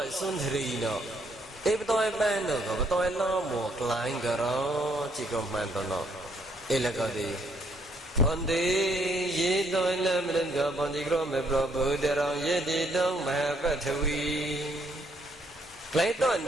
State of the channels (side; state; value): both; normal; correlation 0.70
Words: sundri no, patawai ban no ka, patawai lamo klain karo, cikom manto no, elakadi. Pandi ye toy lam lengga pandi kro me prabu derang ye di dong mahapathawi. Klai toy